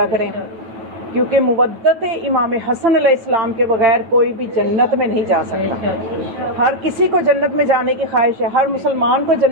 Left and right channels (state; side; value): late; left; 9.2 ms